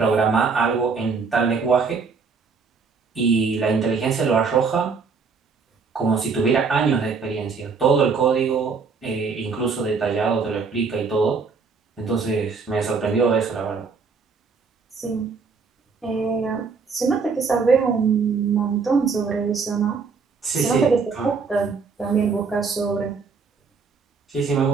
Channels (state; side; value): quieter; left; 5.0 dB